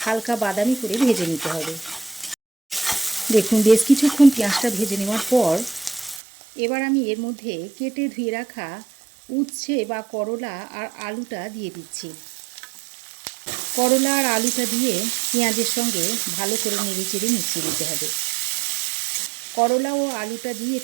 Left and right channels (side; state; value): left; drops out; at 6.2 s